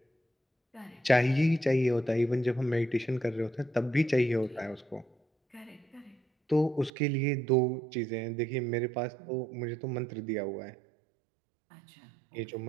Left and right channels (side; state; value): left; drops out; at 6.9 s